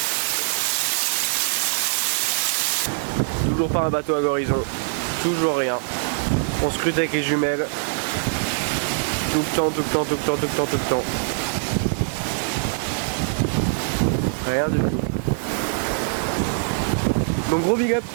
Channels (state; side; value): silent; left; digital silence